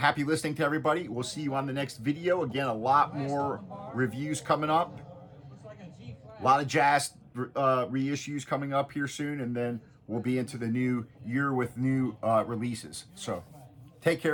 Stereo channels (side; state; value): both; identical; correlation 1.00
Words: listening to everybody. We'll see you on the next video. Again, a lot more reviews coming up. A lot of jazz reissues coming up here soon. And then we'll be into the new year with new releases. So take